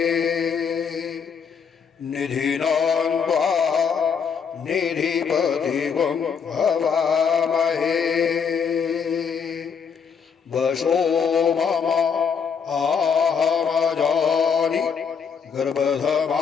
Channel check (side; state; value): right; quieter; 6.5 dB